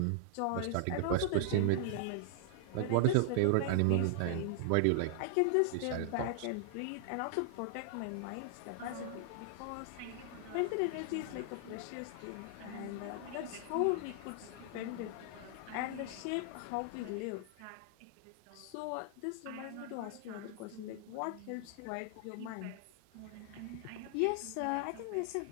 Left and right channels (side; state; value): both; different; correlation -0.01